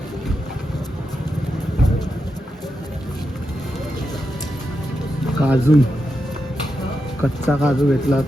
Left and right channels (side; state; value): both; normal; correlation 0.87